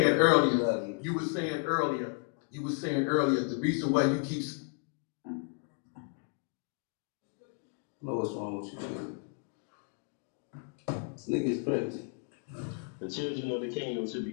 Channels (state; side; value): quieter; right; 35.7 dB